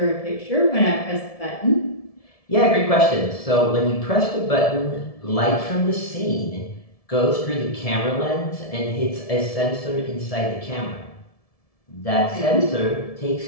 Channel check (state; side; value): late; right; 1.7 ms